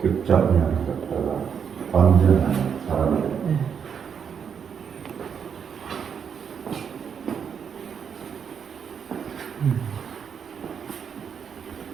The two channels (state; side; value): quieter; left; 7.2 dB